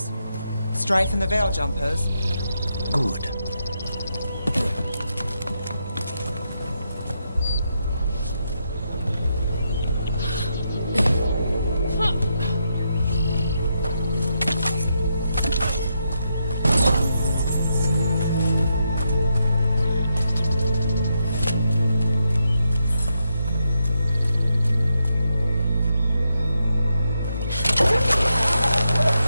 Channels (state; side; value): inverted; both; correlation -0.82